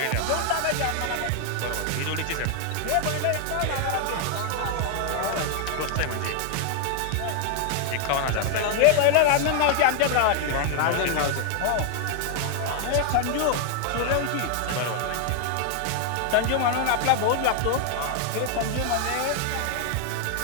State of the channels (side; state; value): both; different; correlation 0.00